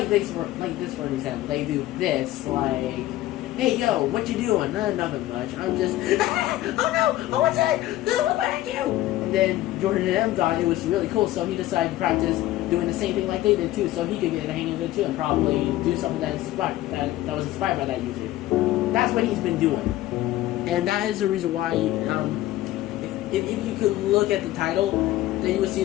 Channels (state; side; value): quieter; right; 15.3 dB